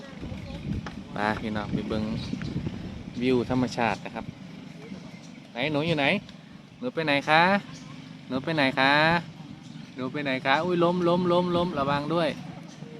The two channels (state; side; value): identical; both; correlation 1.00